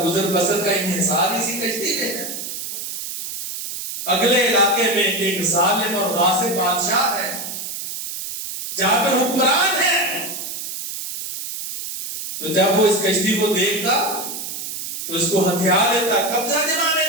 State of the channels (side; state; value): right; noise; hiss, 7 dB below the sound